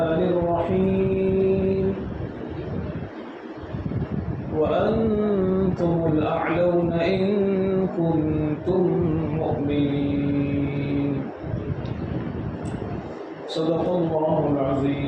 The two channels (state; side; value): identical; both; correlation 1.00